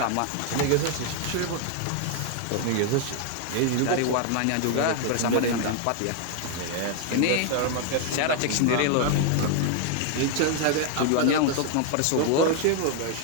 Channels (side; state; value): both; different; correlation 0.00